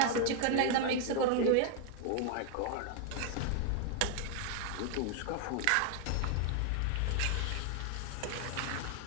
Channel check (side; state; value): both; different; correlation 0.01